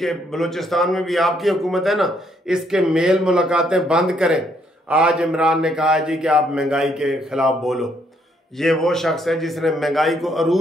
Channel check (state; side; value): normal; both; correlation 0.71